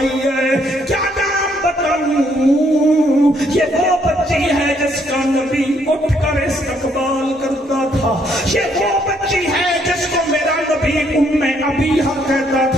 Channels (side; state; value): both; normal; correlation 0.69